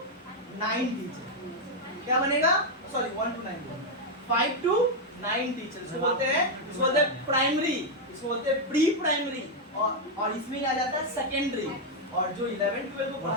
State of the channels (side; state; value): both; normal; correlation 0.01